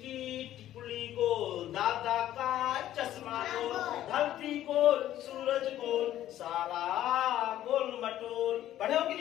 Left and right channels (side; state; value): right; quieter; 12.7 dB